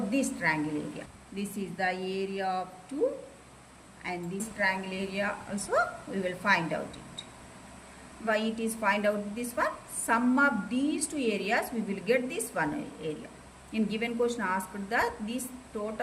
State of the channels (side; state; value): both; identical; correlation 1.00